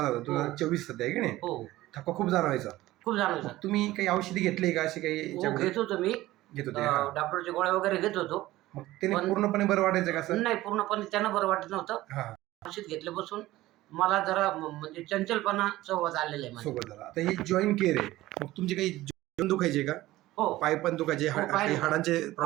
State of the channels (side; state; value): left; quieter; 16.8 dB